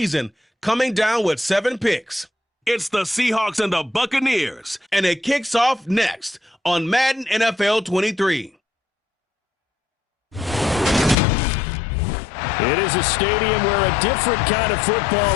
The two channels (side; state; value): right; drops out; at 11.2 s